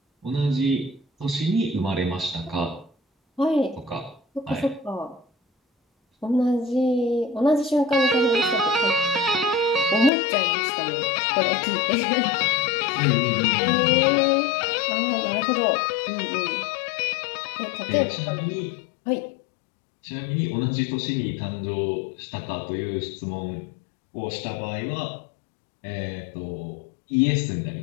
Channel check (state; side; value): drops out; right; at 10.1 s